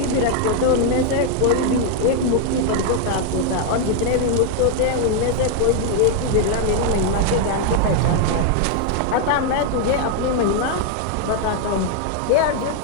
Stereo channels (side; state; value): both; different; correlation 0.00